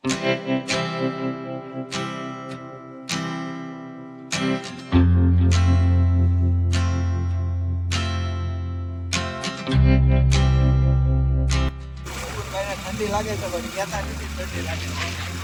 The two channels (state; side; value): identical; both; correlation 1.00